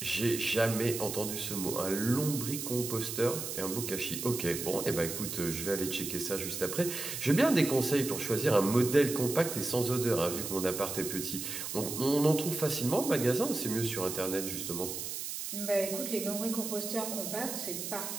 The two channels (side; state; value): right; noise; hiss, 5 dB below the sound